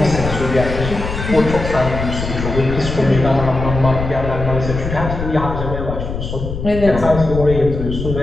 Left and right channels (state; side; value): noise; left; rumble, 5 dB below the sound